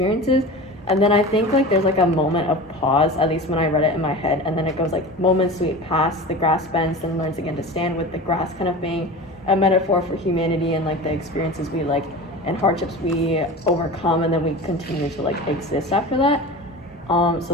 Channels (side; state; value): both; normal; correlation 0.32